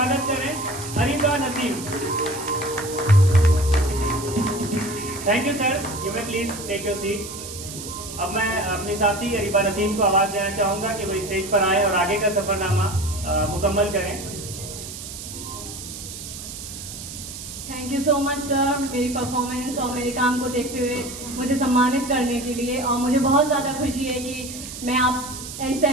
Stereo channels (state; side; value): noise; right; hiss, 10 dB below the sound